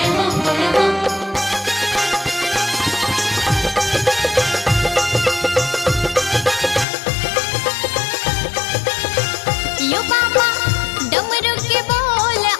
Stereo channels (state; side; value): drops out; right; at 6.9 s